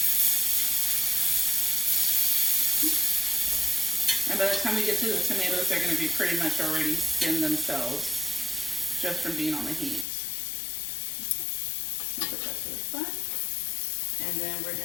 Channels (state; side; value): drops out; right; at 10.1 s